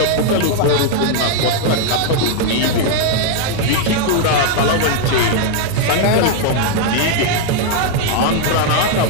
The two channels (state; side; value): different; both; correlation 0.00